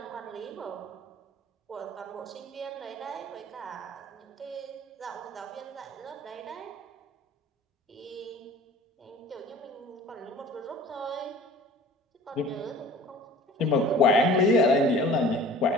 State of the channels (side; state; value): both; normal; correlation 0.45